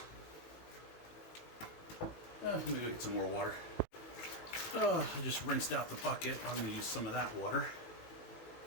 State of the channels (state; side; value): late; right; 18 ms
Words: Let me go get some more water. Oh, I just rinsed out the bucket. I'm going to use some of that water.